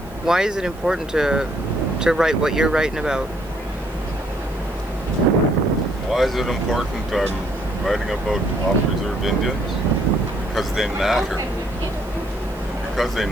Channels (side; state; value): right; noise; hiss, 25 dB below the sound